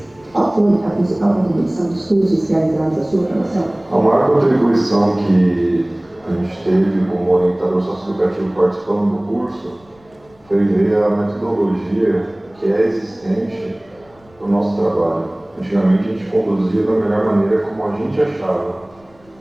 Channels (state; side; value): noise; left; rumble, 30 dB below the sound